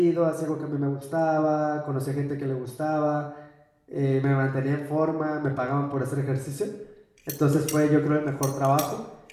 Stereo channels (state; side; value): identical; both; correlation 1.00